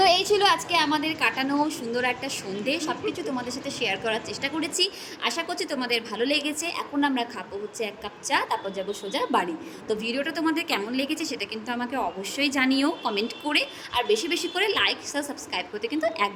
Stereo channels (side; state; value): both; identical; correlation 1.00